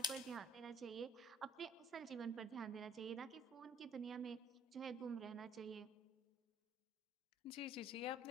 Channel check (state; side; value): normal; both; correlation 0.57